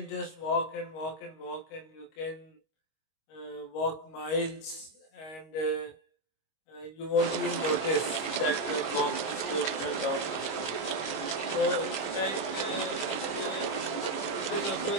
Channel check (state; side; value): late; right; 25 ms